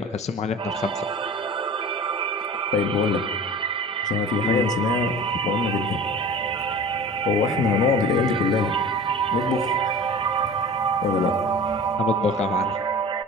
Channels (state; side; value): normal; both; correlation 0.38